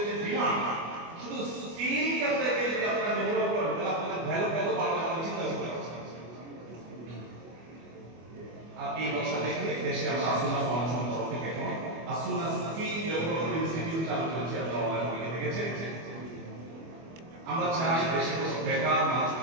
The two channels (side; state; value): left; late; 24 ms